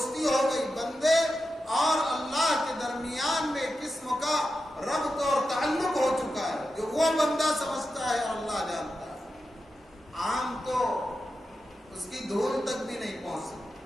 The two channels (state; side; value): normal; both; correlation 0.90